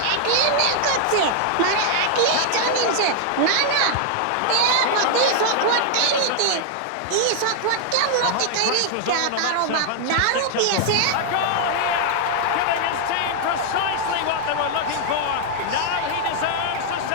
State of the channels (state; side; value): different; both; correlation 0.00